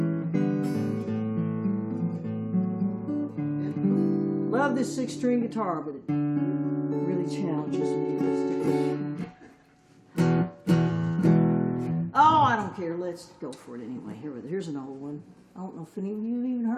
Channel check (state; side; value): identical; both; correlation 1.00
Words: Love this 6-string guitar, but it really challenges me. Oh, I don't care. Let's go for it anyway. Here's an old one. I don't know if any of you have even